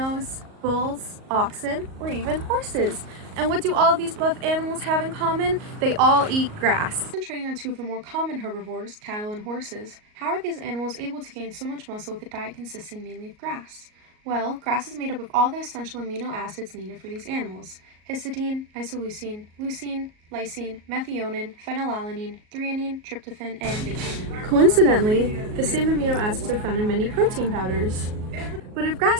bulls, oxen, or even horses. And what do all of these buff animals have in common? They all eat grass. Concentrating on two of the more common herbivores, cattle and horses, how are these animals able to gain so much muscle with a diet consisting mainly of grass? Well, grass is made up of all the essential amino acids needed for these animals: histidine, isoleucine, leucine, lysine, methionine, phenylalanine, threonine, tryptophan, and bacon. Coincidentally, the same amino acids are found in many protein powders. But if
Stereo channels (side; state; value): left; late; 38 ms